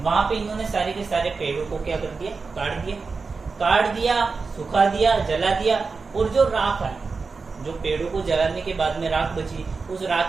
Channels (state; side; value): quieter; left; 4.5 dB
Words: वहां पे इन्होंने सारे के सारे पेड़ों को क्या कर दिया, काट दिया, सुखा दिया, जला दिया, और जो राख है, जो पेड़ों को जलाने के बाद में राख बची, उस